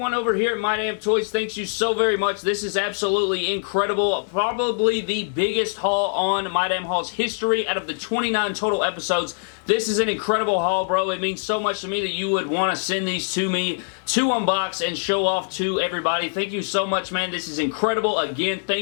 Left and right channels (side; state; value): right; silent; digital silence